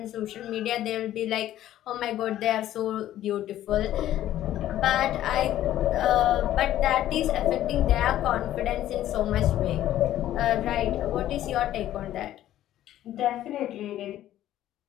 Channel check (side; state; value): right; quieter; 12.9 dB